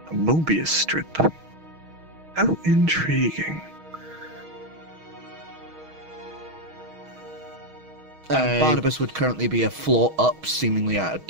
A Mobius strip. How intriguing. And Barnabas would currently be a floor up, seemingly at a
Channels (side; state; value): left; late; 6.3 ms